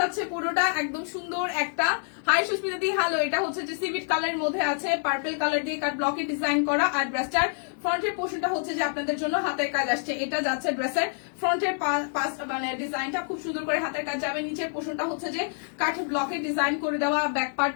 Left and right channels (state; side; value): silent; right; 60 dB below the other